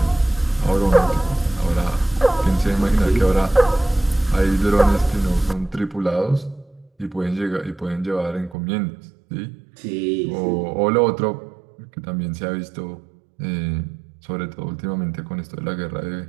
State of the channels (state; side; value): drops out; left; at 8.6 s